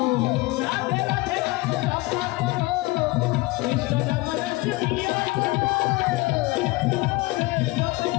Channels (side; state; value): right; quieter; 21.8 dB